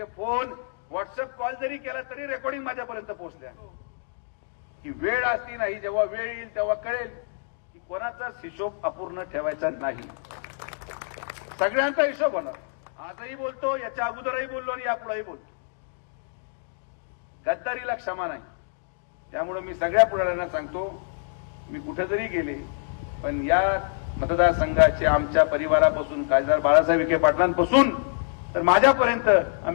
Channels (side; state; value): right; silent; digital silence